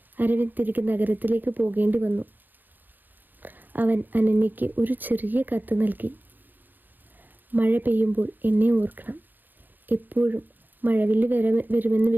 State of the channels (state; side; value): late; left; 0.088 ms